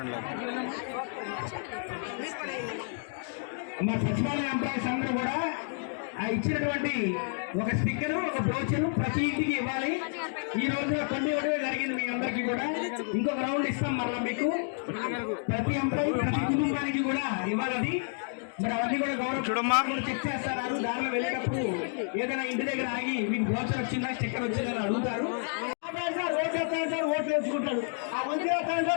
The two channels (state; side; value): silent; right; 58 dB below the other